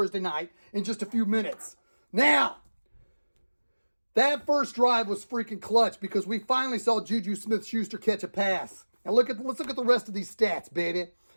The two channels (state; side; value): inverted; both; correlation -1.00